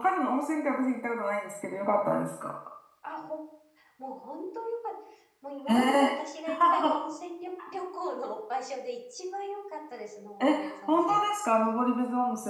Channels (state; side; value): identical; both; correlation 1.00